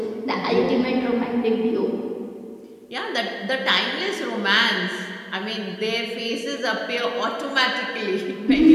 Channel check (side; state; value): both; identical; correlation 1.00